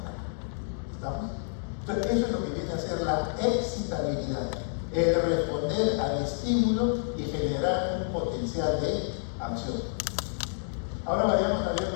¿Estamos? Entonces, eso es lo que viene a ser la excitabilidad, el responder al estímulo y generar un potencial de acción. Ahora vayamos a ver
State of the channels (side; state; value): right; silent; digital silence